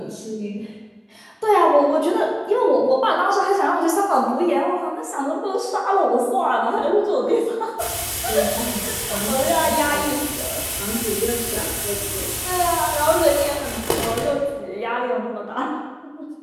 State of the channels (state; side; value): identical; both; correlation 1.00